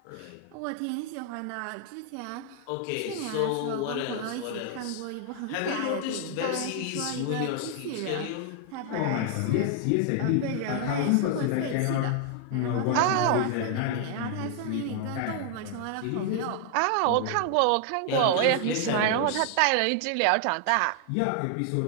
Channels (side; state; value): both; different; correlation 0.00